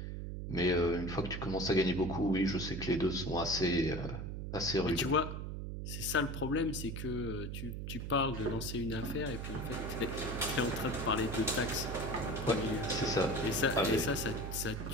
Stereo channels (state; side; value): noise; right; hum, 5 dB below the sound